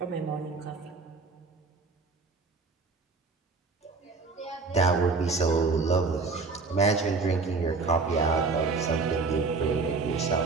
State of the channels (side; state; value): left; quieter; 4.1 dB